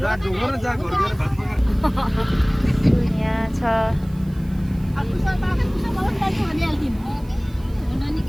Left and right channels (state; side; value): noise; right; hiss, 27 dB below the sound